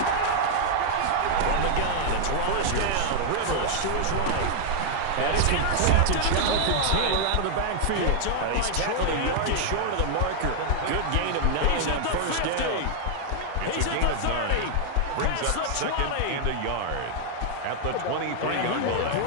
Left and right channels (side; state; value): both; different; correlation 0.00